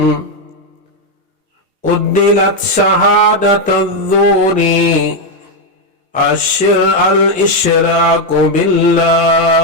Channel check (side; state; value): both; normal; correlation 0.03